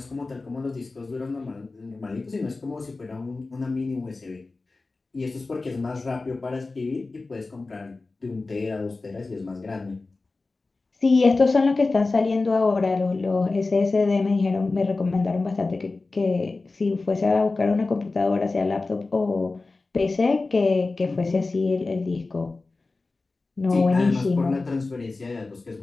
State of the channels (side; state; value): right; quieter; 3.6 dB